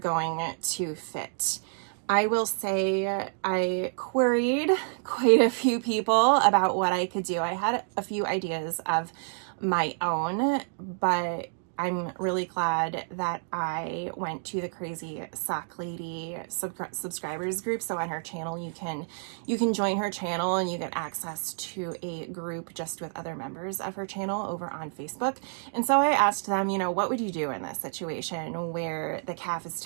to fit. I will say I queried quite a few people about what I could do. I had a few ideas of my own, but I'm really glad that I went to the Crazy Sock Lady subscribers group. So on her channel, you can join her channel and you get access to a group just with other members of her channel over on Facebook. And so I asked them, you know, what would you do in this situation where the calf is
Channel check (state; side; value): silent; left; digital silence